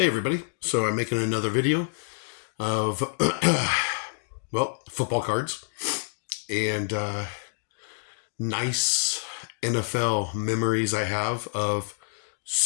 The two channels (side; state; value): right; silent; digital silence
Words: so I'm making another video of, football cards and nice NFL memories I have of